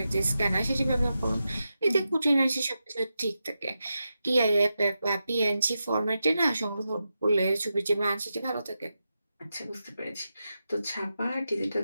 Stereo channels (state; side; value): inverted; both; correlation -0.89